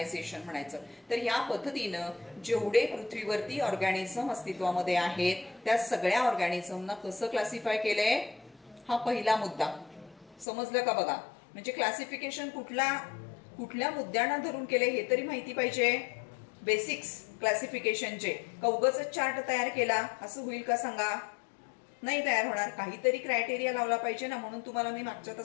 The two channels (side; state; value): right; drops out; at 10.5 s